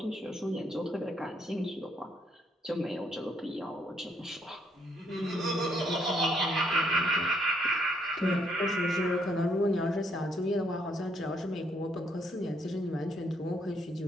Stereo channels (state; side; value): normal; both; correlation 0.71